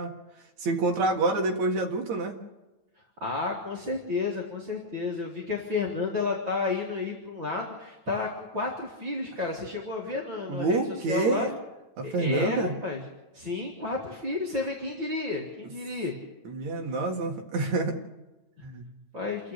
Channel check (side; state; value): left; late; 9.1 ms